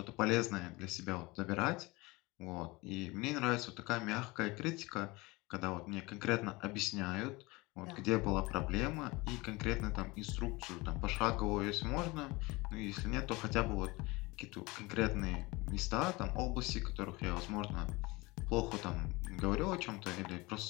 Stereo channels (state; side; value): quieter; right; 23.2 dB